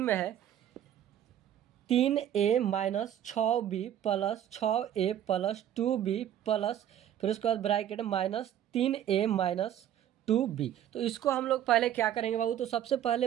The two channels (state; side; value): quieter; left; 10.8 dB